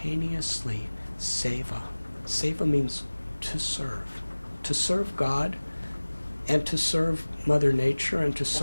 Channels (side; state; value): both; inverted; correlation -1.00